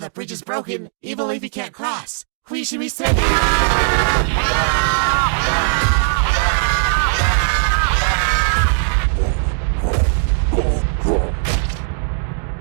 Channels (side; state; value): left; silent; digital silence